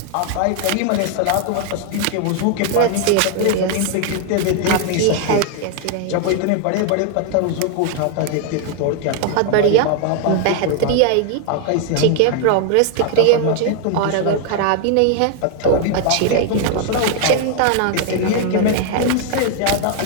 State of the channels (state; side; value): different; both; correlation 0.00